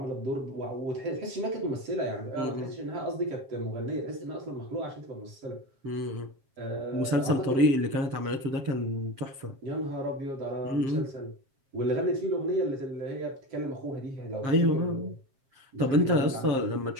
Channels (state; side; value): late; left; 7.5 ms